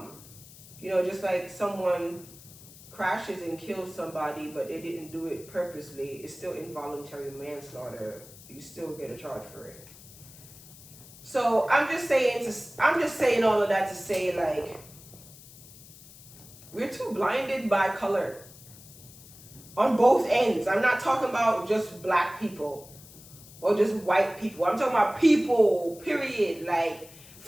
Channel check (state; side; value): noise; left; hiss, 20 dB below the sound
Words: Just like someone crashes and kills somebody, but they didn't do it purposely, it's still involuntary manslaughter. You still get a charge for it. So I'm just saying all of that to say, like, we're too blinded by color on both ends. I'm not talking about just black people or just white people. I'm talking about people, period. Like,